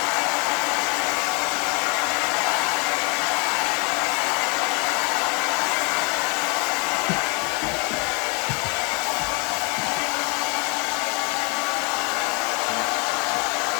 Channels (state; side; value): quieter; right; 33.2 dB